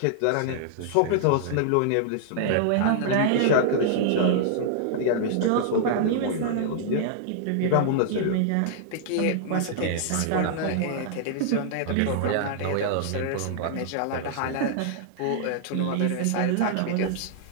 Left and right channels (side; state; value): both; different; correlation -0.01